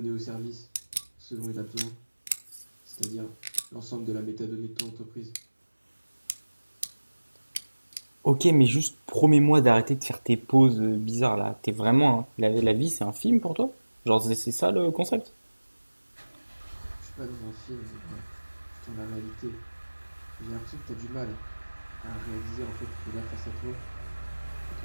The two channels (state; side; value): inverted; both; correlation -1.00